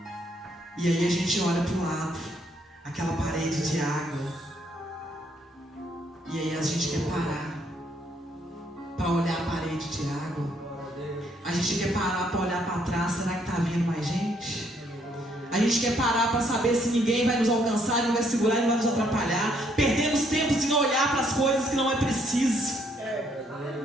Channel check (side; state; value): both; normal; correlation 0.69